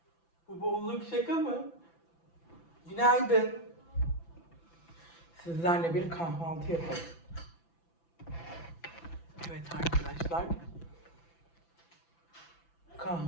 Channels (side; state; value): right; late; 5.9 ms